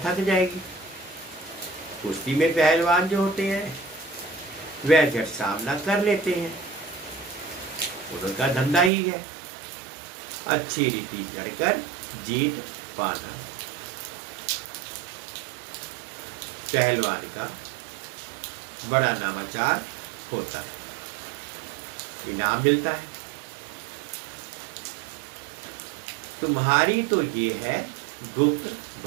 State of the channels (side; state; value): left; drops out; at 8.9 s